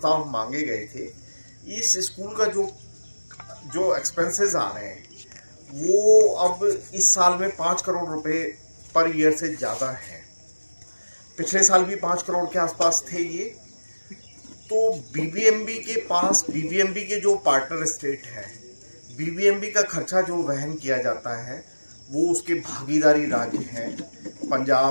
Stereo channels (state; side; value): inverted; both; correlation -1.00